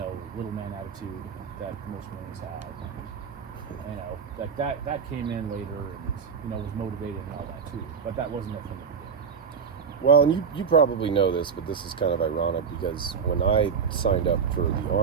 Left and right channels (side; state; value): left; quieter; 6.3 dB